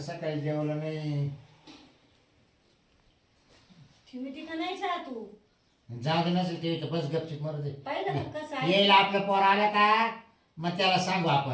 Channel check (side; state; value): both; identical; correlation 1.00